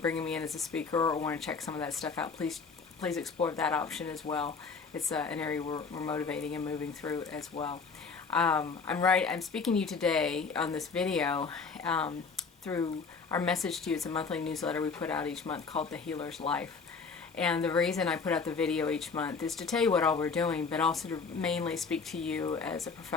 bringing me in as a speaker or want to check some of that stuff out, please explore that option as well. It's an area we're motivating and moving through as well. I'm speaking to you today on this video through our message to you. It's a monthly newsletter we put out each month called The Healer's Life. And the reason I put out the video each month is to tell you what all we're doing, but also to mainly speak to you as a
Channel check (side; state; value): right; quieter; 5.0 dB